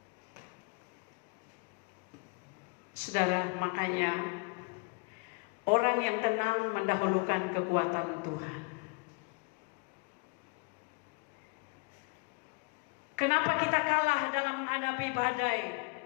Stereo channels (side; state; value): right; quieter; 30.9 dB